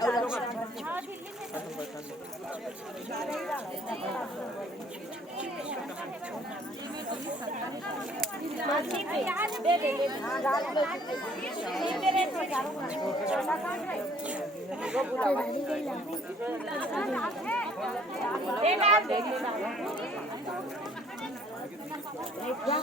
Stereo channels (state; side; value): normal; both; correlation 0.59